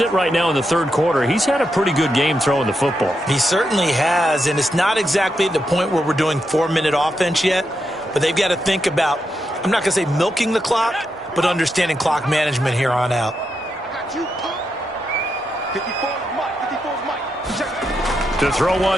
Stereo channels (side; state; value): both; normal; correlation 0.84